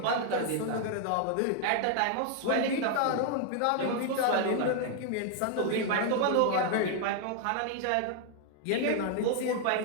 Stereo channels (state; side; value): different; both; correlation 0.00